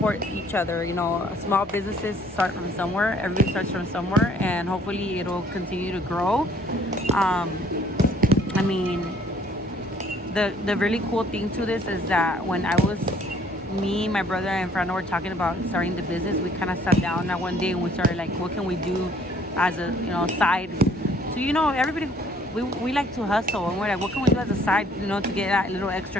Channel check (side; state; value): both; normal; correlation 0.60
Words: each other. You know, small businesses start from somewhere. Everybody starts from somewhere, and hopefully it'll continue to grow. I mean, the really cool thing to this is that when me, my brother, and Fernando were talking about starting the business, we kind of sat down that one day and we started like, what can we do as a, you know, side? So, you know, everybody, we like to hustle, and we're like, what can we do as a side, you know, to get that little extra